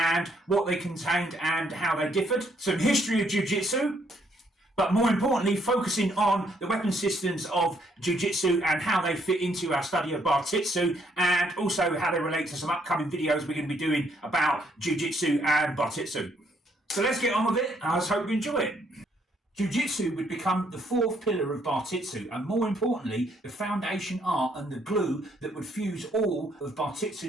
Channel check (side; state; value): both; normal; correlation 0.70